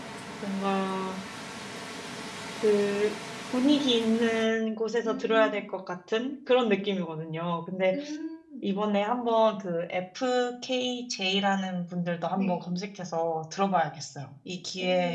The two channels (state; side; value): identical; both; correlation 1.00